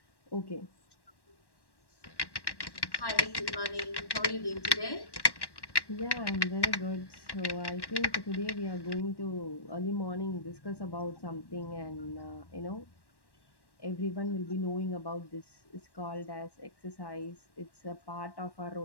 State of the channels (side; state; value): right; late; 1.1 ms